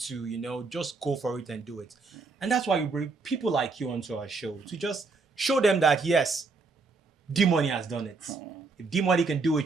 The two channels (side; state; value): left; quieter; 4.1 dB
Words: just go for it and do it. And that's why we bring people like you onto our show to just show them that, yes, Dee Money has done it. If Dee Money can do